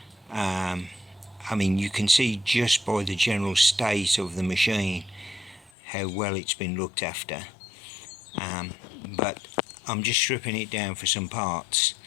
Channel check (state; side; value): drops out; right; at 5.7 s